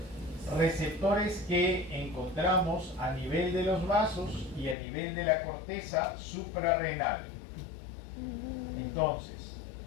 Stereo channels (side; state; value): right; drops out; at 4.8 s